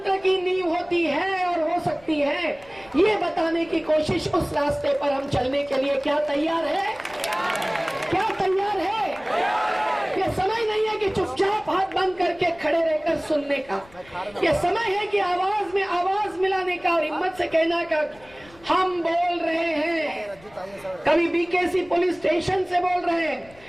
की नींव होती है और हो सकती है। ये बताने की कोशिश, उस रास्ते पर हम चलने के लिए क्या तैयार है? क्या तैयार है? ये समय नहीं है कि चुपचाप हाथ बंद करके खड़े रहकर सुनने का। ये समय है कि आवाज में आवाज मिलाने का और हिम्मत से कहना का, हम बोल रहे हैं। कभी बीकेसी पुलिस स्टेशन से बोल रहे हैं,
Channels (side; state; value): left; noise; rumble, 26 dB below the sound